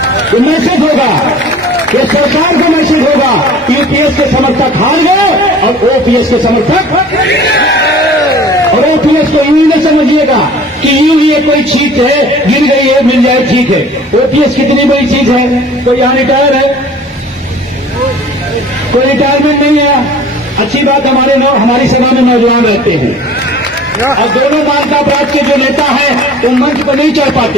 ये मैसेज होगा, ये सरकार को मैसेज होगा। यूपीएस के समर्थक हार गए और ओपीएस के समर्थक, और ओपीएस को यूं न समझिएगा कि यूं ये कोई चीज है, गिर गई है मिल जाए ठीक है। ओपीएस कितनी बड़ी चीज है। कोई यहां रिटायर है, कोई रिटायरमेंट नहीं है। अच्छी बात, हमारी सभा में नौजवान रहते हैं और दोनों मार्का अपराध के जो नेता हैं वो मंच पर नहीं चढ़ पाते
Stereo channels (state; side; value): normal; both; correlation 0.46